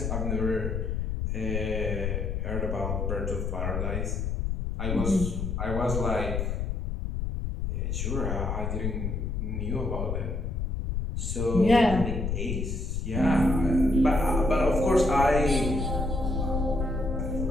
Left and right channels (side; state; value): left; noise; rumble, 1 dB below the sound